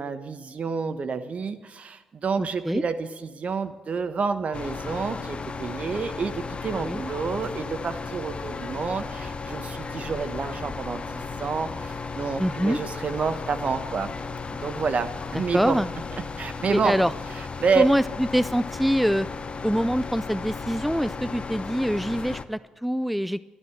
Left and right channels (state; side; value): normal; both; correlation 0.89